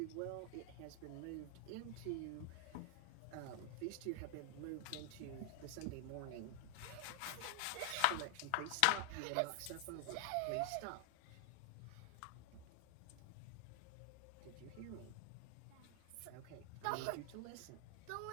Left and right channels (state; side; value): different; both; correlation 0.00